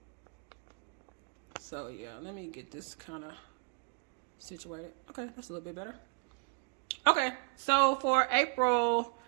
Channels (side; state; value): left; quieter; 35.4 dB